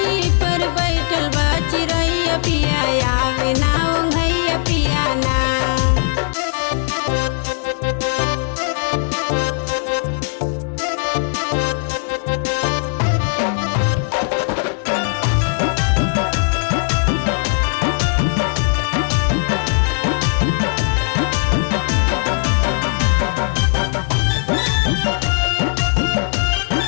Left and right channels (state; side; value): silent; right; digital silence